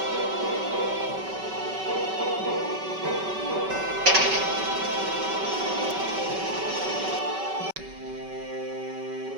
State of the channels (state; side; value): late; left; 5.2 ms